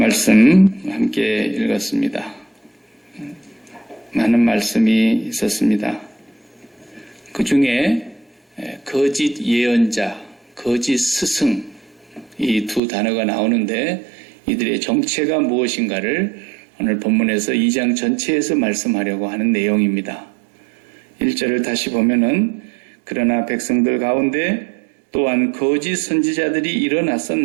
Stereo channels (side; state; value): left; drops out; at 12.8 s